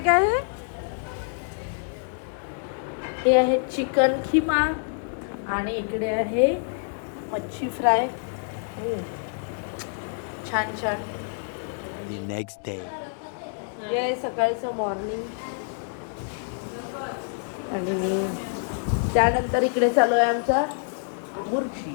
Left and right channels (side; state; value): right; silent; digital silence